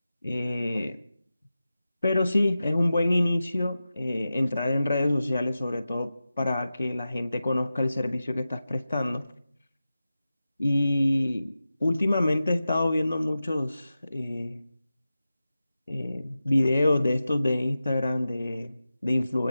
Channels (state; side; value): inverted; both; correlation -0.93